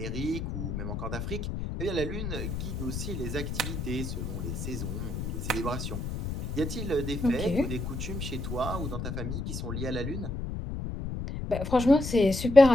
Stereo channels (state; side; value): noise; left; rumble, 4 dB below the sound